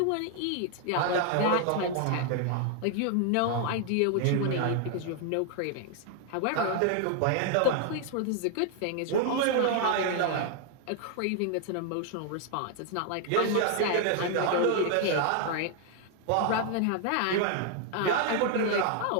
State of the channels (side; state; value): both; different; correlation 0.00